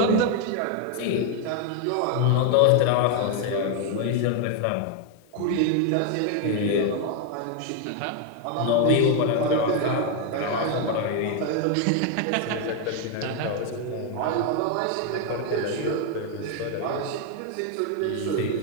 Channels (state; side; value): different; both; correlation 0.01